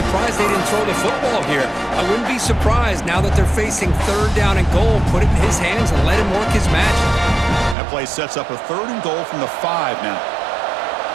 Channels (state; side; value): drops out; left; at 7.8 s